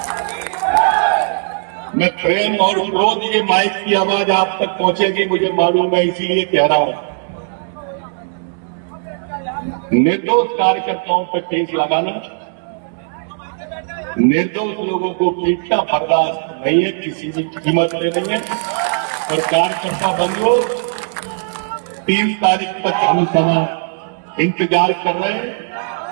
मैं प्रेम और क्रोध, ये माइक की आवाज आप तक पहुंचेगी मुझे मालूम है, इसीलिए कह रहा हूं। निर्दोष कार्यकर्ताओं पर केस लगाना, निर्दोष लोगों को पीटना बर्दाश्त नहीं है, किसी भी कीमत पे नहीं है। और कार्यकर्ता बंधुओं, 3 तारीख तक हम समाज इंतजार कर रहे हैं।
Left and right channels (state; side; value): silent; left; 67 dB below the other